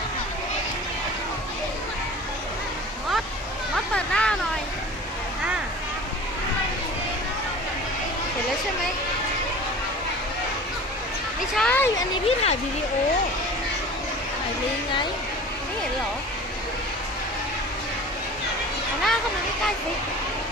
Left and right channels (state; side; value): normal; both; correlation 0.40